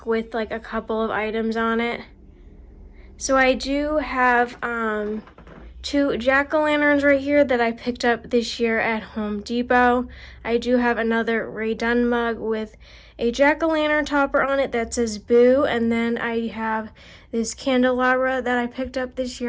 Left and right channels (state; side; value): identical; both; correlation 1.00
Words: with like a couple of items on it. So I do have 2 jack-o'-lanterns right here that I picked up this year at Home Depot. I do have another Rae Dunn mug with a jack-o'-lantern topper on it that says boo. And then I have this candelabra that I picked up this